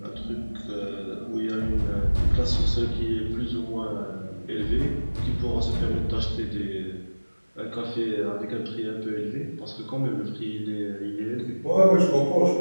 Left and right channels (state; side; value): inverted; both; correlation -1.00